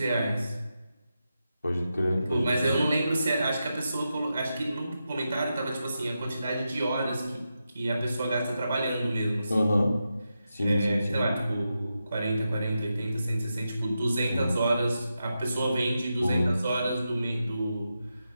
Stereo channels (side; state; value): both; inverted; correlation -0.88